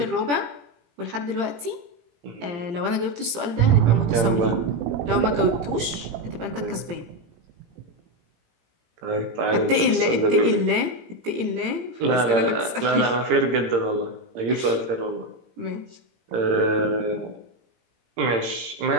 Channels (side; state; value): left; late; 17 ms